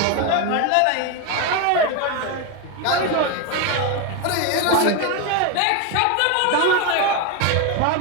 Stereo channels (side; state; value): both; different; correlation 0.02